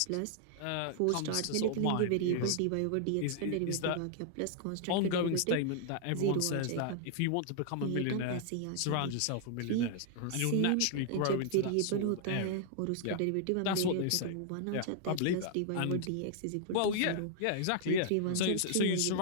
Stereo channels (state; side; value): different; both; correlation -0.01